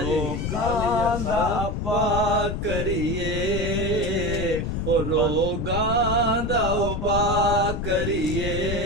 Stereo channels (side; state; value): left; noise; rumble, 2 dB below the sound